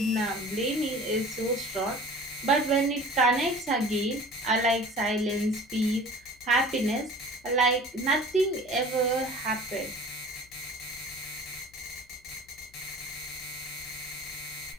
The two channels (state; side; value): noise; left; hum, 28 dB below the sound